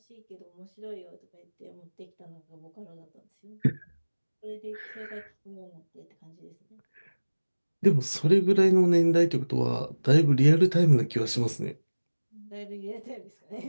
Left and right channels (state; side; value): inverted; both; correlation -1.00